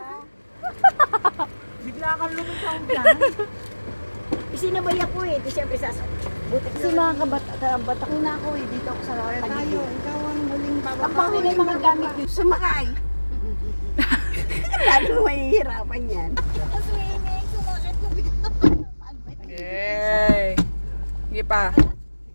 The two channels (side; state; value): both; inverted; correlation -1.00